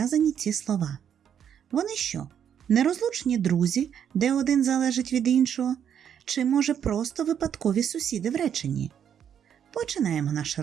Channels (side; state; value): left; quieter; 8.8 dB